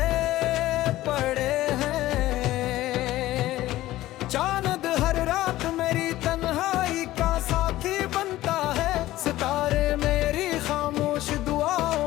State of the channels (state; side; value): quieter; right; 15.7 dB